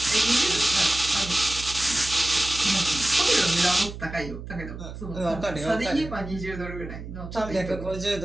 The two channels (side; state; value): right; noise; hum, 11 dB below the sound